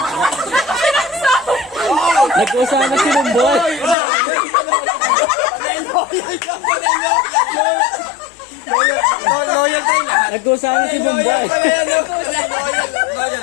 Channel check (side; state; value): right; drops out; at 4.0 s